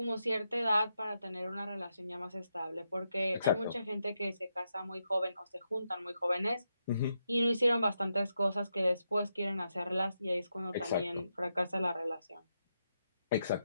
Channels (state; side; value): inverted; both; correlation -0.84